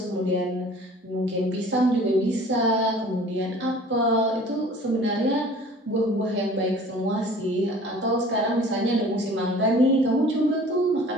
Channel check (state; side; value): normal; both; correlation 0.47